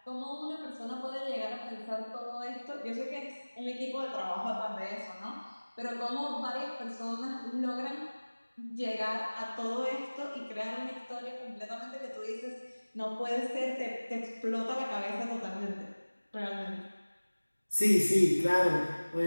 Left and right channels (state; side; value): inverted; both; correlation -1.00